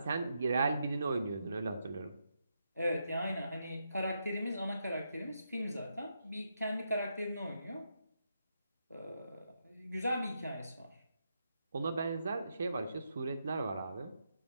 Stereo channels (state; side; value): inverted; both; correlation -0.82